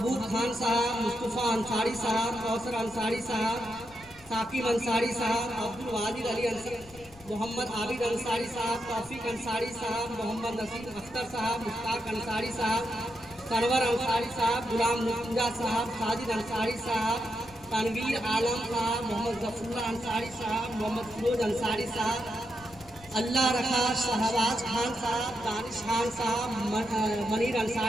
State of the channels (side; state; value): left; noise; rumble, 22 dB below the sound